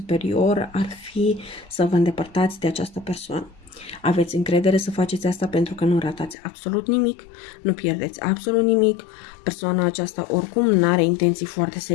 ar fi să vă îndepărtați de această persoană. Aveți încredere să faceți asta pentru că nu ratați absolut nimic, nu pierdeți absolut nimic. Persoana aceasta oricum nu are intenții foarte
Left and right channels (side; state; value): right; drops out; at 6.4 s